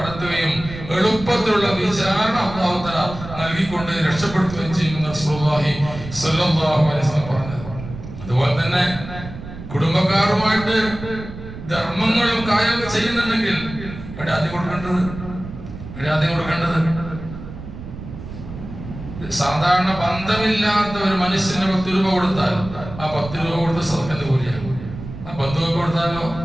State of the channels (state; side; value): noise; right; rumble, 12 dB below the sound